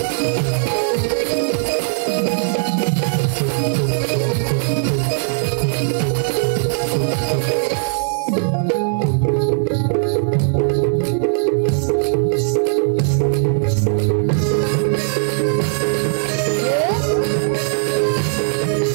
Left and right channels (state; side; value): silent; left; 59 dB below the other